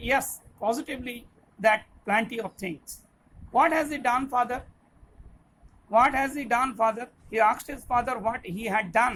yes, positively, that plenty of things. What has he done, father? What has he done, father? He asked his father what he had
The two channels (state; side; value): identical; both; correlation 1.00